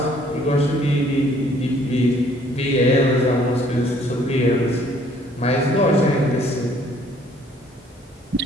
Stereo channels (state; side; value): normal; both; correlation 0.60